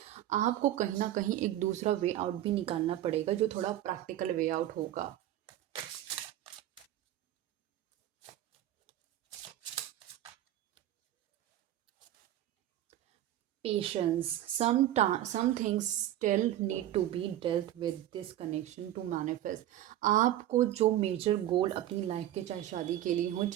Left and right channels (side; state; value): left; quieter; 13.0 dB